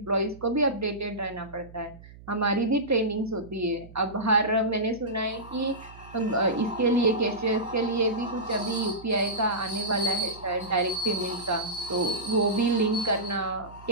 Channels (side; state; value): right; noise; hum, 19 dB below the sound